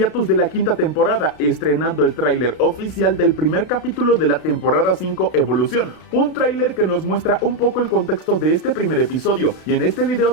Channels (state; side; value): late; right; 32 ms